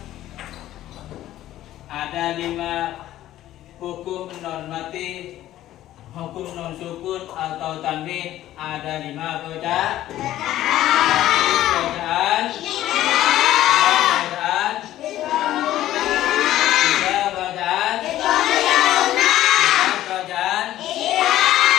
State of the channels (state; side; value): quieter; right; 13.7 dB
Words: ada 5 hukum normatif, hukum non sukun atau tanwin, ada 5 bacaan. Bacaan